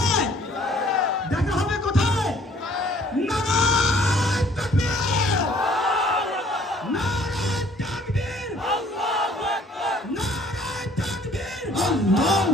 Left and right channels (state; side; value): normal; both; correlation 0.58